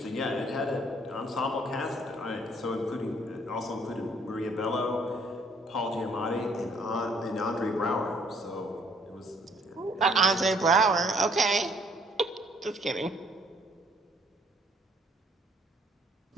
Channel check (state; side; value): normal; both; correlation 0.63